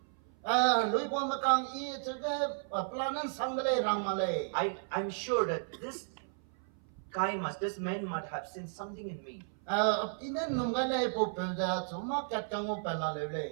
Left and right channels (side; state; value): left; silent; 55 dB below the other